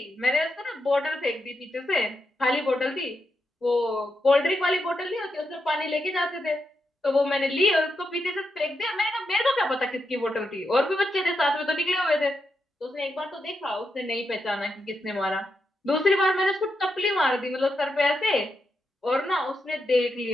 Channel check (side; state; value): both; normal; correlation 0.84